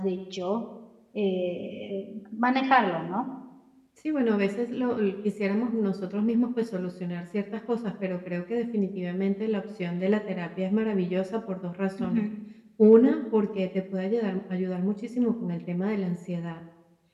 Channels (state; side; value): identical; both; correlation 1.00